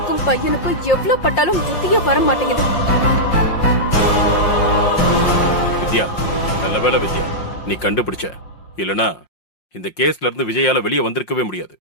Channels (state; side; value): late; right; 5.6 ms